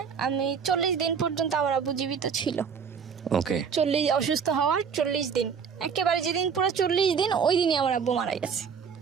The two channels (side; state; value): left; quieter; 6.6 dB